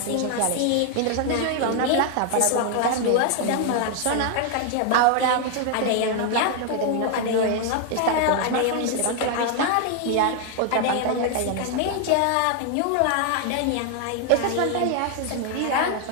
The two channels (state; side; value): different; both; correlation 0.00